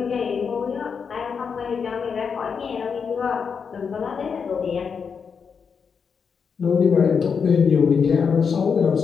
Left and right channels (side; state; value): right; quieter; 6.2 dB